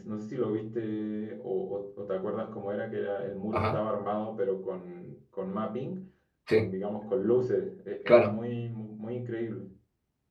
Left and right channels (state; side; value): identical; both; correlation 1.00